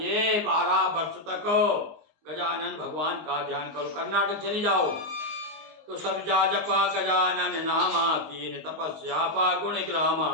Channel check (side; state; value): left; late; 19 ms